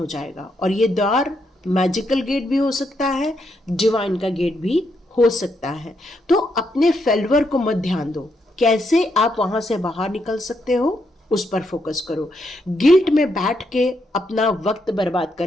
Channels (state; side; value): normal; both; correlation 0.79